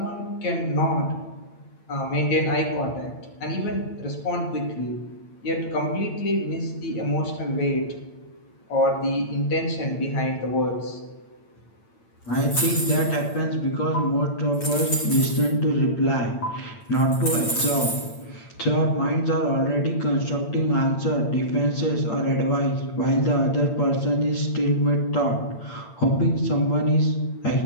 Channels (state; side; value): late; right; 8.8 ms